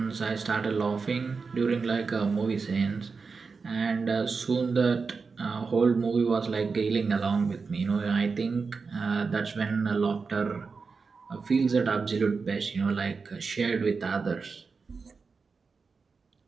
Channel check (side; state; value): left; quieter; 4.8 dB